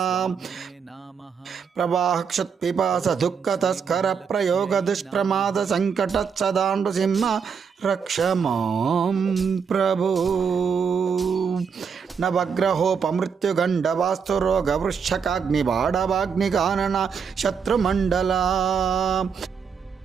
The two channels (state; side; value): quieter; left; 6.3 dB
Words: ప్రవాహక్షత్పిపాస దుఃఖతస్కర ప్రయోగ దుష్ప్రమాద సంకట సదా నృసింహ రక్ష మాం ప్రభో. నవగ్రహోపమృత్యుగండవాస్తురోగవృశ్చకాగ్నిబాడవాగ్నికానన శత్రుమండలా.